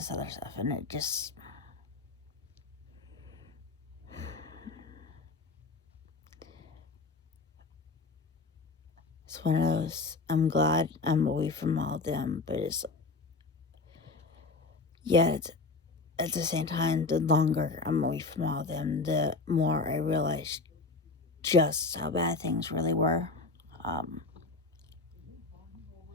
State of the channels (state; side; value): quieter; right; 3.8 dB